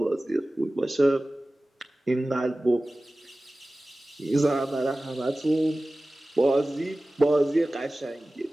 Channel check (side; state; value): both; normal; correlation 0.97